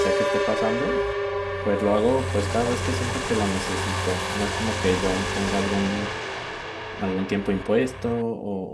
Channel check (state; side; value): identical; both; correlation 1.00